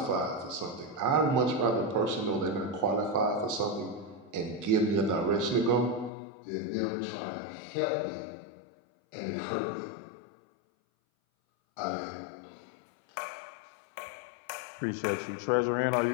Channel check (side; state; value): right; drops out; at 6.1 s